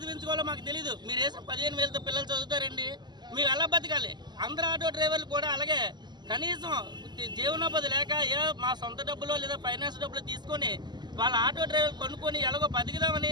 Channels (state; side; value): late; left; 0.21 ms